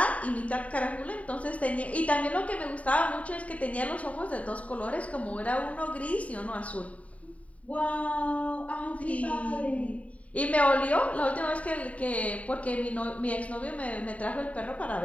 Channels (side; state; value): right; late; 0.067 ms